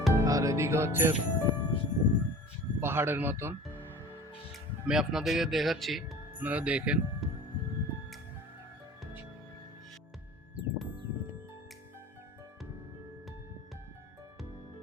আর এদিকে হচ্ছে পাহাড়ের মতন। আমি আপনাদেরকে দেখাচ্ছি, আপনারা দেখেন।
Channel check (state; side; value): normal; both; correlation 0.41